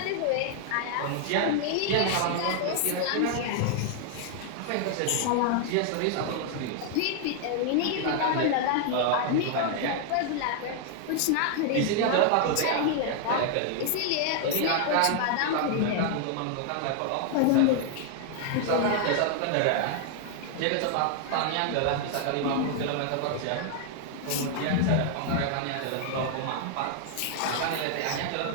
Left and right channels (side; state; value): both; different; correlation 0.00